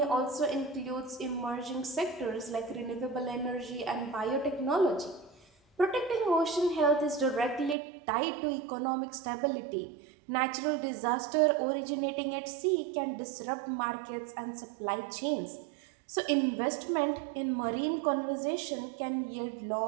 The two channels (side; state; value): left; drops out; at 7.8 s